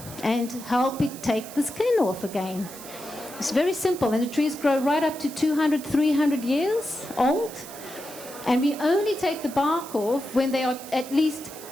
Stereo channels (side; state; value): right; noise; hiss, 15 dB below the sound